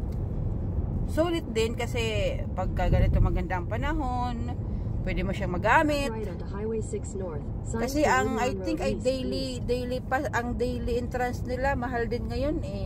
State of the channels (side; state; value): both; identical; correlation 1.00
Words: Sulit din kasi pag ganito maganda ang panahon, pwede mo siyang magamit. Kasi ang I think ay daily pass, ang daily entrance nila mahal din ngayon